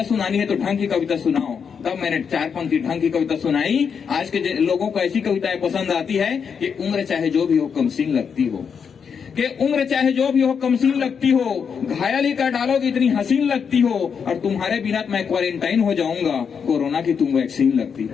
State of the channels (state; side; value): quieter; right; 6.6 dB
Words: सुनानी है तो ढंग की कविता सुनाओ। तब मैंने 4 पंक्ति ढंग की कविता सुनाई। आज के लोगों को ऐसी कविताएं पसंद आती है कि उम्र चाहे जो भी हो कमसीन लगती हो, कि उम्र चाहे जो भी हो कमसीन लगती हो, घायल ही कर डालोगे इतनी हसीन लगती हो, और तुम्हारे बिना मैं क्वारंटाइन हो जाऊंगा, कोरोना की तुम वैक्सीन लगती है।